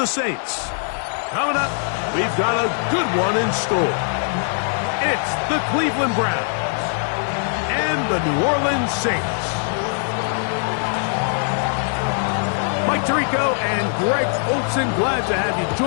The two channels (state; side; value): silent; right; 63 dB below the other